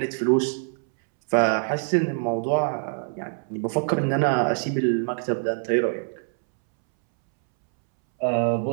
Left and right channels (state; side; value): silent; left; 62 dB below the other